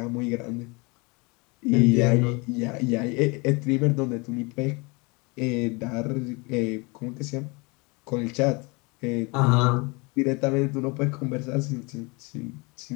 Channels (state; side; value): quieter; right; 28.1 dB